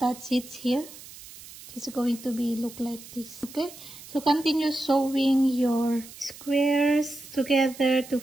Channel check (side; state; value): right; noise; hiss, 17 dB below the sound